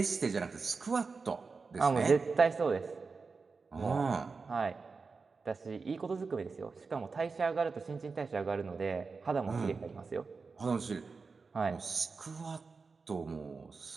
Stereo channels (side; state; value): left; quieter; 4.6 dB